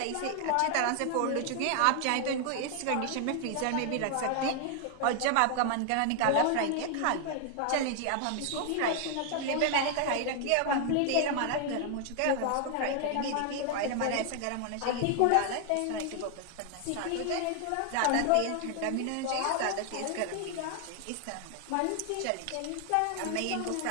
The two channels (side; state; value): both; different; correlation 0.00